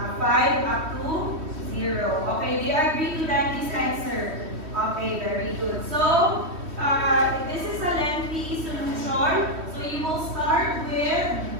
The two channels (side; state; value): left; late; 3.1 ms